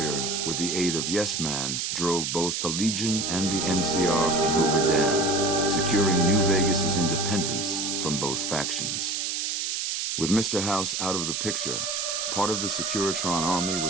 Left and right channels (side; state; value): right; noise; hiss, 1 dB below the sound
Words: with the aid of Yes Man, drove both the Legion and the NCR from Hoover Dam, securing New Vegas's independence from both factions. With Mr. House out of the picture, part of the Securitron army